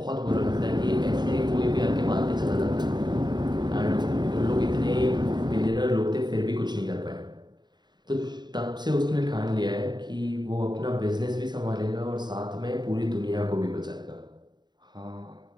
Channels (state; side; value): late; left; 0.21 ms